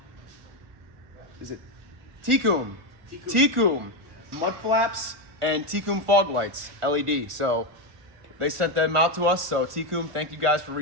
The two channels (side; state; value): left; late; 1.5 ms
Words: is it Tecum mud flaps and Tecum fog lights, LED. So they sent them out to us. So Tecum, thank you guys for